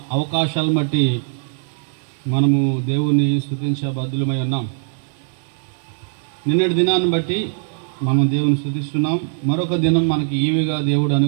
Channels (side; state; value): left; silent; digital silence